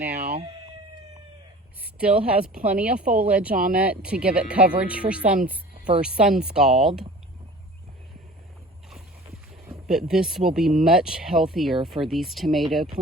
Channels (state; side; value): normal; both; correlation 0.43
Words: Still has plenty of foliage on it to give it coverage for sun scald. But this will be much healthier for these tomato